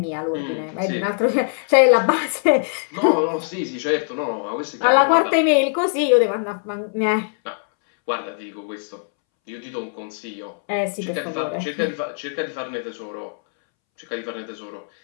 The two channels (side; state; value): right; silent; 64 dB below the other